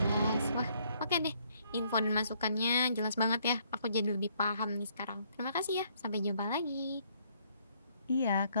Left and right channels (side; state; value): both; inverted; correlation -0.68